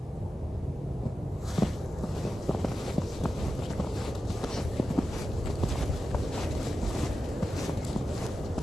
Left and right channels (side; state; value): both; normal; correlation 0.92